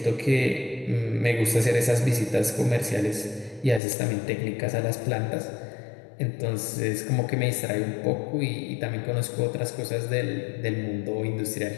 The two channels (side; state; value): right; drops out; at 3.8 s